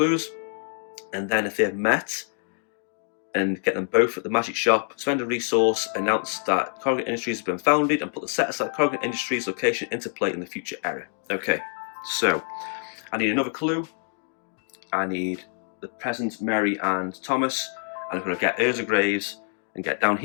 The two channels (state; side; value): silent; right; 61 dB below the other